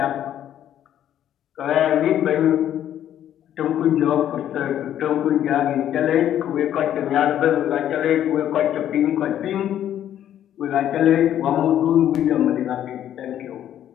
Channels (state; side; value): quieter; right; 10.9 dB